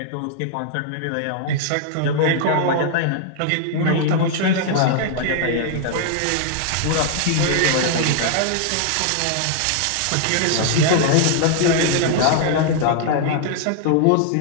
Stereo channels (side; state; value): both; different; correlation -0.01